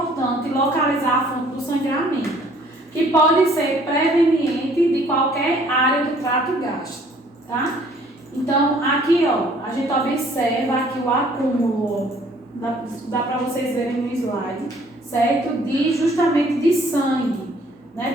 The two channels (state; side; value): normal; both; correlation 0.58